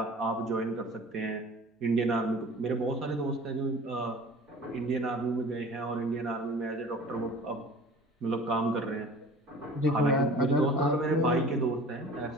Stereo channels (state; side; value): normal; both; correlation 0.44